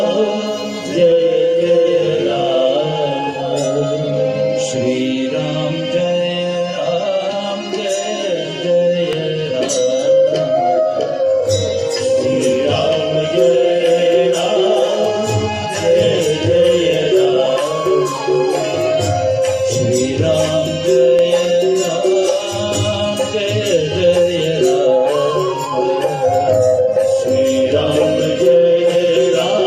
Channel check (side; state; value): both; identical; correlation 1.00